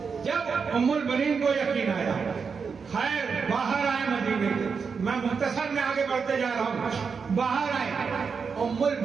जब उम्मुल बनीन को यकीन आया, खैर बाहर आए मदीने के, मैं मुख्तसर में आगे बढ़ते जा रहा हूं। बाहर आए उम्मुल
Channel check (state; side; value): quieter; left; 5.6 dB